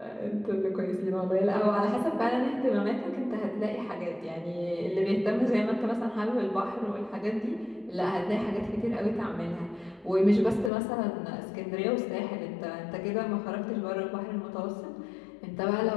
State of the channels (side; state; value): right; drops out; at 10.7 s